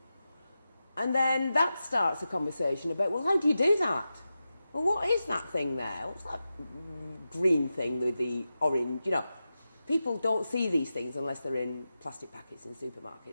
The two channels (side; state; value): both; inverted; correlation -0.92